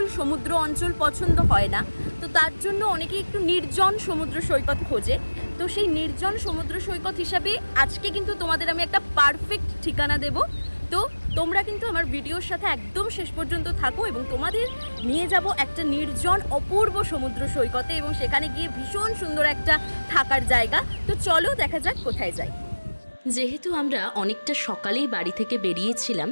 সমুদ্র অঞ্চল পছন্দ হয় না, তো তার জন্য অনেকেই একটু নির্জন সমুদ্র সৈকত খোঁজে। তো সেই নির্জন সমুদ্র সৈকত হিসাবে আজকে কিন্তু তোমাদের আমি একটা পারফেক্ট ঠিকানা দেব। তো তোমরা কিন্তু আমার ভিডিওর সাথে একদম শেষ পর্যন্ত থাকো এবং তোমাদের নিয়ে যাব একটা নির্জন অপূর্ব সমুদ্র সৈকতে, এবং সেখানে গিয়ে ভীষণ সুন্দর একটা থাকার জায়গা। তো চলো দেখা যাক কোথায় যাই। যেহেতু আমরা অনেকটা সকালেই বাড়ি থেকে বেরিয়েছিলাম,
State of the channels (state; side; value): inverted; both; correlation -1.00